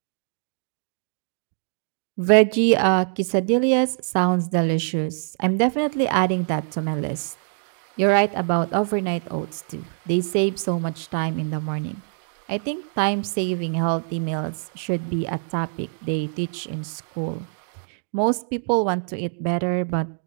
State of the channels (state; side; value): silent; left; digital silence